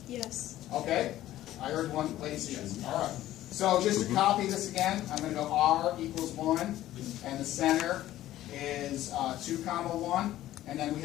Yes. Okay? I heard one lady say yes. All right. So just to copy this again, I'm going to go r equals 1, and the center is 2 comma 1. And then we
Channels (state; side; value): quieter; right; 14.1 dB